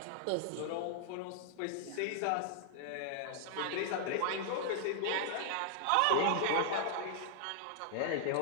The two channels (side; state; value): both; different; correlation -0.01